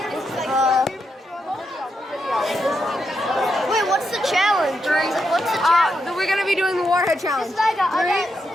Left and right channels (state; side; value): normal; both; correlation 0.83